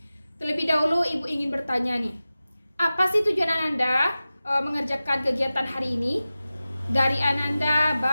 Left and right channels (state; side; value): inverted; both; correlation -0.95